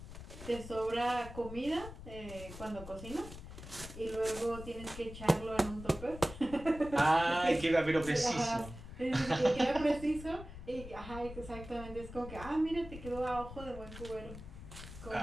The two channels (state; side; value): noise; left; rumble, 13 dB below the sound